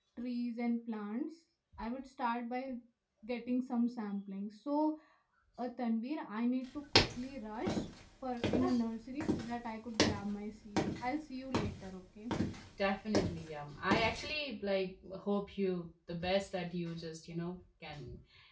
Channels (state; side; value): identical; both; correlation 1.00